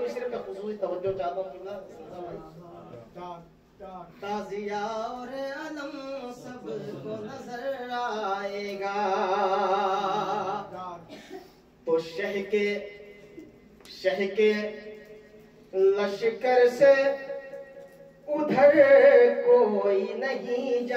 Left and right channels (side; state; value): both; identical; correlation 1.00